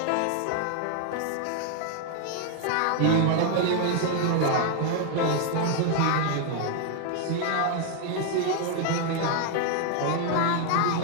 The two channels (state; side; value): different; both; correlation 0.00